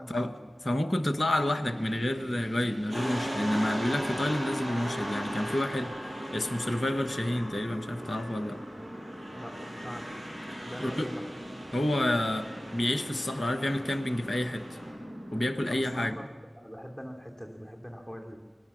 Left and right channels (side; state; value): both; normal; correlation 0.96